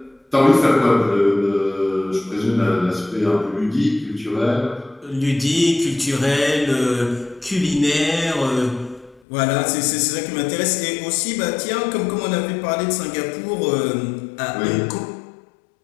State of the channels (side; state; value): right; drops out; at 9.2 s